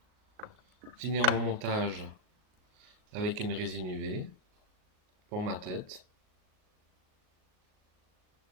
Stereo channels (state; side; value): late; left; 38 ms